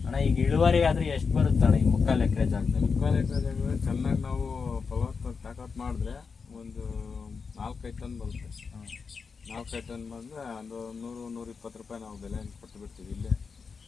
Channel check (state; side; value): quieter; right; 5.3 dB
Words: ಅಣ್ಣ, ಈಗ ಇಳುವರಿ ಆದ್ರೆ ಎಷ್ಟು ಬರುತ್ತೆ ಅಣ್ಣ ಈ 3/4 ಎಕರೆ ಜಾಗದಲ್ಲಿ? 3/4 ಎಕರೆ ಜಾಗದಲ್ಲಿ ಚೆನ್ನಾಗಿ ನಾವು ತಾಕತ್ ಮಾಡಿದ್ರೆ ಒಂದು 4-5 ಟನ್ ಬರುತ್ತೆ. 4-5 ಟನ್ ಬಂದ್ರೆ ಒಂದು 100-120 ರೂಪಾಯಿ ನಾವು ಬೆಲೆ ಕೊಟ್ಟು ಬಿಡ್ತೀವಿ. ಇಲ್ಲೇ